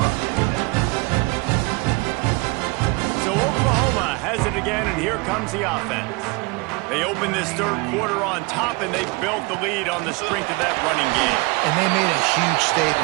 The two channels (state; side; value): quieter; left; 27.2 dB